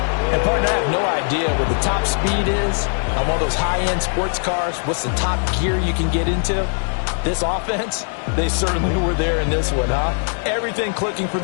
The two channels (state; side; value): silent; right; digital silence